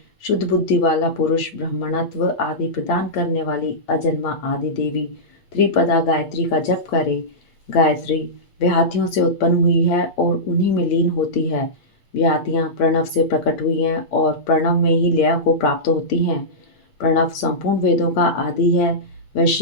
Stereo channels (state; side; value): late; right; 8.9 ms